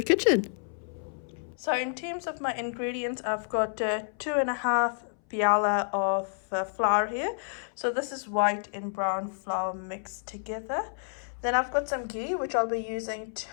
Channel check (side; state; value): right; silent; 58 dB below the other